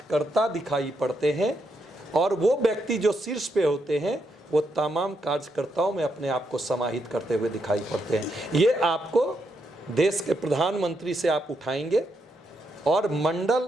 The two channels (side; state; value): both; normal; correlation 0.80